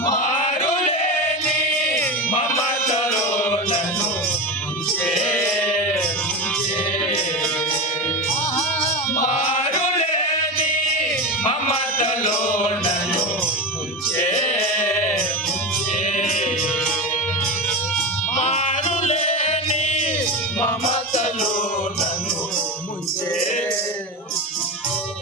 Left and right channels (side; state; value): both; normal; correlation 0.20